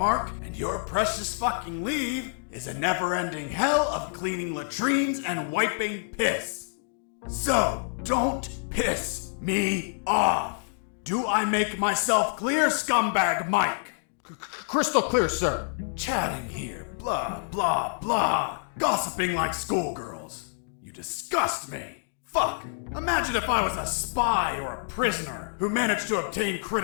and your precious fucking leave is a never-ending hell of cleaning latrines and wiping piss. So, don't piss me off. Do I make myself clear, scumbag Mike? Crystal clear, sir. Chatting here, blah, blah, blah. Gossiping like schoolgirls. You disgust me. Fuck. Imagine if I was a spy or a prisoner who managed to obtain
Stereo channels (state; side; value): silent; right; digital silence